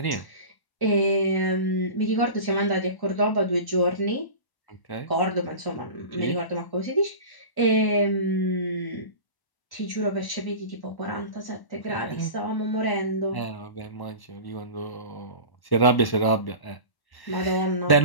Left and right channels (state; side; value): late; right; 1.1 ms